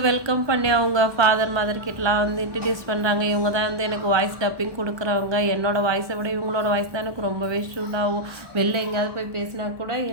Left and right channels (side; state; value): left; late; 1.2 ms